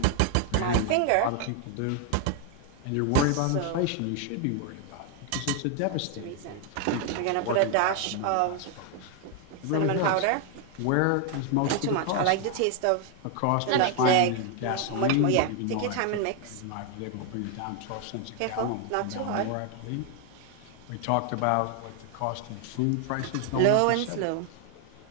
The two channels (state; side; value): different; both; correlation 0.00